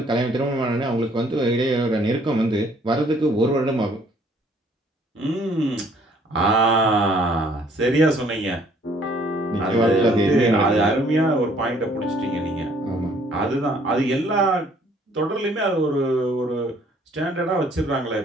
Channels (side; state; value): both; normal; correlation 0.60